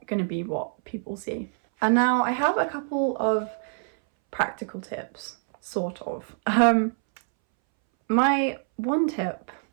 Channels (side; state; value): left; silent; 61 dB below the other